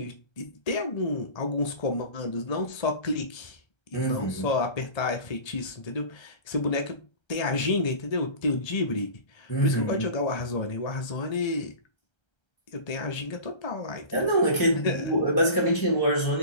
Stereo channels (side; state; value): right; late; 1.3 ms